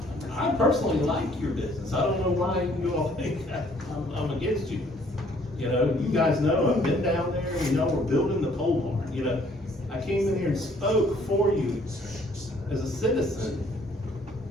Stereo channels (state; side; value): normal; both; correlation 0.61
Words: I personally like your business. I don't know why you all think I'm against you. You know, you guys know, I've been down there, you know, we're building the pole barn, you know. I came in here and spoke for you as a citizen